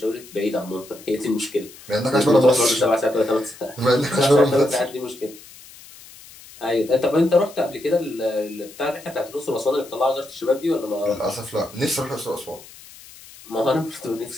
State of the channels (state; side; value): noise; left; hiss, 20 dB below the sound